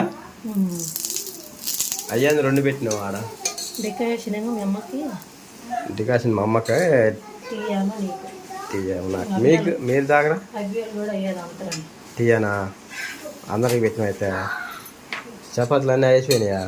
అయ్యాన్ని 2 పెట్టినావు ఆడ డెకరేషన్ ఏమో మీ అమ్మకి డికాషన్ మా అమ్మకి తీయామా నీకు తీయాము నాకు మీకు మీరు తాగరా అవి కూడా అయ్యేది అంతరం తీయనా అందరికి పెట్టిన అయితే చపాతీలు అన్నీ అయిపోయినాయా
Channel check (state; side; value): identical; both; correlation 1.00